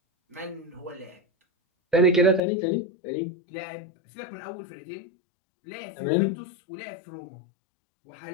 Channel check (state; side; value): drops out; right; at 2.4 s